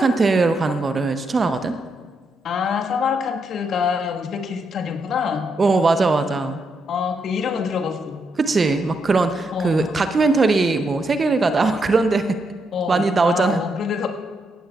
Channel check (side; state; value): both; normal; correlation 0.80